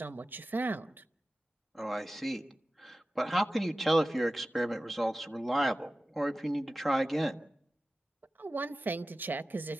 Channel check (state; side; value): normal; both; correlation 0.95